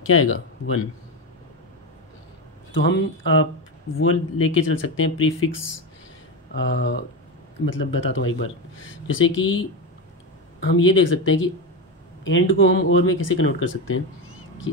क्या आएगा 1। तो हम आप वो लेके चल सकते हैं प्रीफिक्स, मतलब बताता हूँ एक बार। जैसे कि हम ये देख सकते हैं कि एंड को हम और में कैसे कन्वर्ट कर सकते हैं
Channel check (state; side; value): normal; both; correlation 0.16